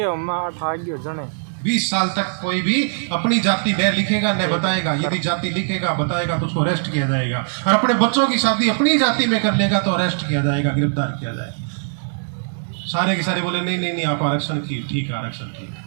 20 साल तक कोई भी अपनी जाति न लिखेगा न बताएगा। यदि जाति लिखेगा बताएगा तो उसको अरेस्ट किया जाएगा, और अपने बच्चों की शादी अपनी जाति में कर लेगा तो अरेस्ट किया जाएगा, गिरफ्तार किया जाएगा। सारे के सारे बोले नहीं नहीं नहीं, आप आरक्षण की ठीक है, आरक्षण ठीक है,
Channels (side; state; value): left; silent; digital silence